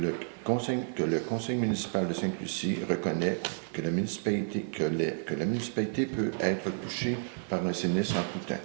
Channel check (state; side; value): silent; left; 57 dB below the other